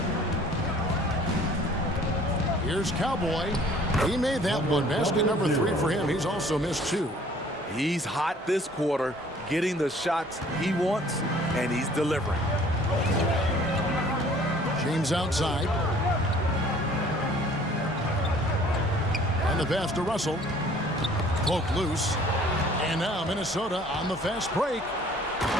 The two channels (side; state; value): both; normal; correlation 0.54